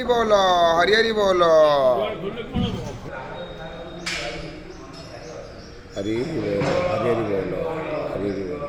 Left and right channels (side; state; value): both; identical; correlation 1.00